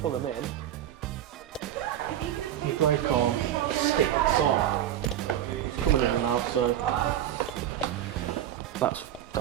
pull them in, your brake arm sticks on. It's coming in and out, so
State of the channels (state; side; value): quieter; left; 11.4 dB